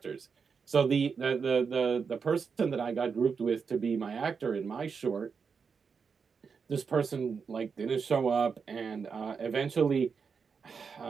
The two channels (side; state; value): left; quieter; 5.8 dB